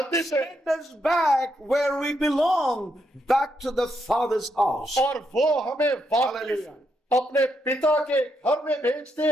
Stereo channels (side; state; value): both; normal; correlation 0.79